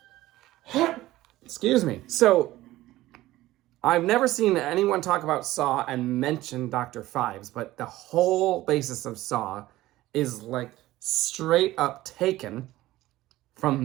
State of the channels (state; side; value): quieter; left; 16.5 dB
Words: Excuse me. So, I've never seen anyone talk about Saw and mention Dr. Phibes, but the whole basis of Saw is like straight up taken